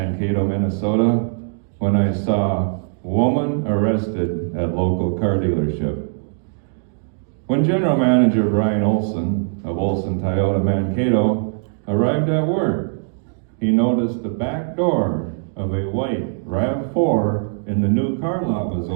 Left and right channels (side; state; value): left; silent; digital silence